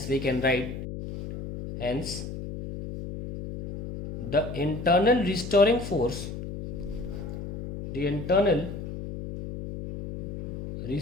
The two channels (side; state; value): left; noise; hum, 8 dB below the sound